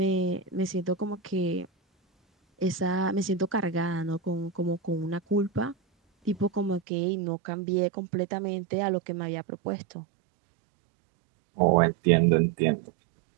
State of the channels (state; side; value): drops out; left; at 6.8 s